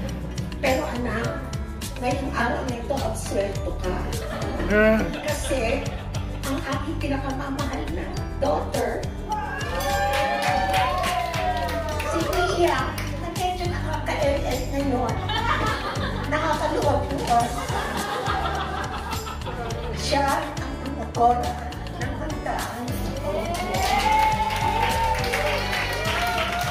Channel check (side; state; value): both; identical; correlation 1.00